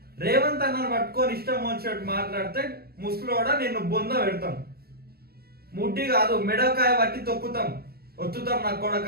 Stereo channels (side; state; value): left; late; 0.45 ms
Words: రేవంత్ అన్నను పట్టుకొని ఇష్టం వచ్చినట్టు మాట్లాడితే ముసలోడా నిన్ను బొంద పెడతాం. ముడ్డి కాదు మెడకాయ పట్టి తొక్కుతాం, ఒత్తుతాం. నా